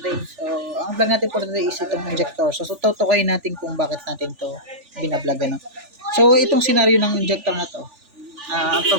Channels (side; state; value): left; late; 3.4 ms